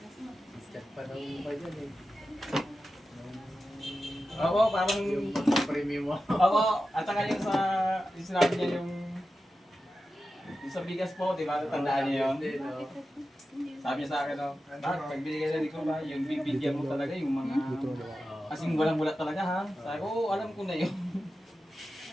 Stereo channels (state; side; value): normal; both; correlation 0.92